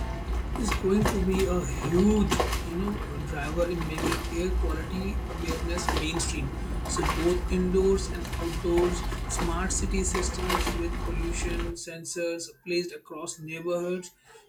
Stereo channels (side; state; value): both; identical; correlation 1.00